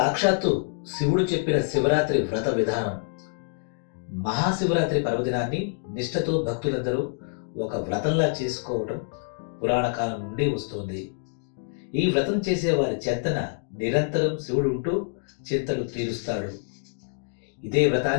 శివుడు చెప్పిన శివరాత్రి వ్రత విధానం. మహాశివరాత్రి పర్వదినాన్ని నిష్ఠతో భక్తులందరూ ఒక వ్రతంలా చేసుకోవటం పురాణ కాలం నుండి వస్తోంది. ఈ వ్రతం చేసే వారి చెంతన నిరంతరం శివుడు ఉంటూ చింతలు తీరుస్తాడు. ఇదే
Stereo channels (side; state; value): right; silent; digital silence